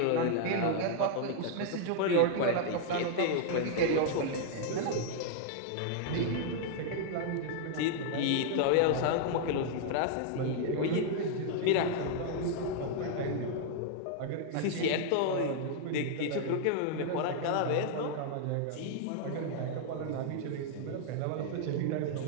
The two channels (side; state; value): both; different; correlation -0.01